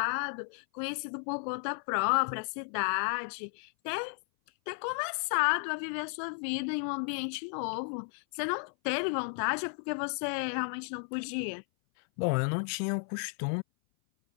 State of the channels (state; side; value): silent; right; 55 dB below the other